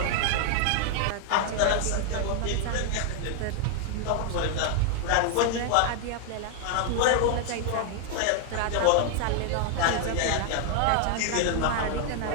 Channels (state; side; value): different; both; correlation 0.00